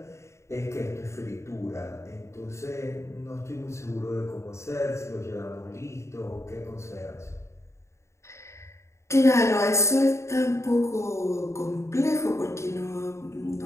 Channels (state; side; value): late; right; 0.14 ms